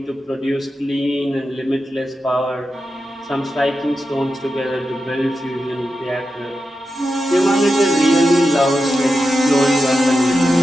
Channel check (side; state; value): both; normal; correlation 0.90